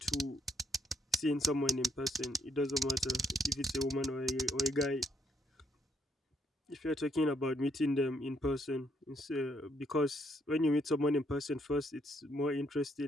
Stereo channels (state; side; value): normal; both; correlation 0.72